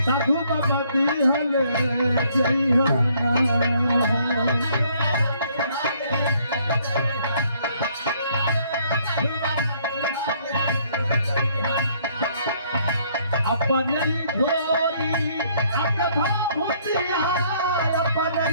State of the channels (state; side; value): inverted; both; correlation -0.65